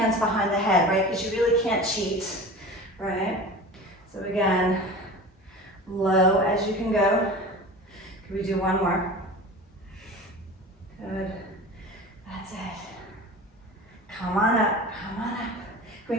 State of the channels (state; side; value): normal; both; correlation 0.35